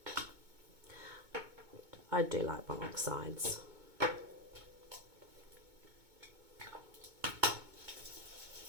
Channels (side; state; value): left; late; 2.2 ms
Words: I do like my oxides.